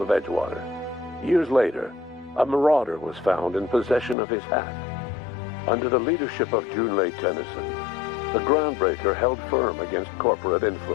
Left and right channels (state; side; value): drops out; right; at 4.2 s